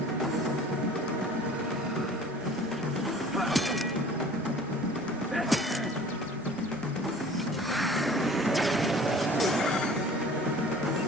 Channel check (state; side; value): normal; both; correlation 0.47